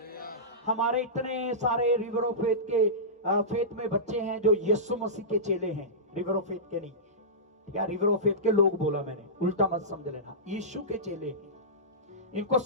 हमारे इतने सारे रिवर ऑफ फेथ के फेथ में बच्चे हैं जो यीशु मसीह के चेले हैं, रिवर ऑफ फेथ के नहीं, या रिवर ऑफ फेथ के लोग बोला मैंने, उल्टा मत समझ लेना, यीशु के चेले हैं। इनको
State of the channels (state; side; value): normal; both; correlation -0.18